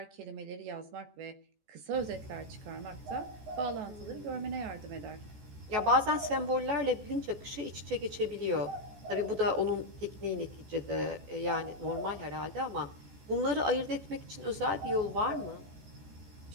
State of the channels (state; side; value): late; left; 14 ms